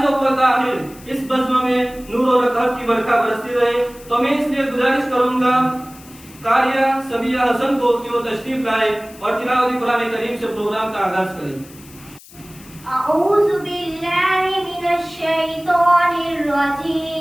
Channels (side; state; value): left; noise; hiss, 22 dB below the sound